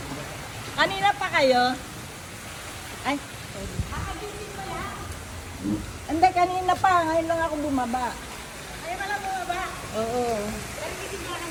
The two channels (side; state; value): both; identical; correlation 1.00